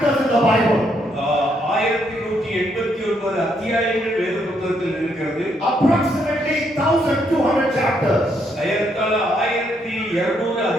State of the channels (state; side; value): normal; both; correlation 0.74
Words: in the Bible. 1189 அத்தியாயங்கள் வேத புத்தகத்தில் இருக்கிறது. Approximately 1200 chapters. ஏறத்தாழ 1200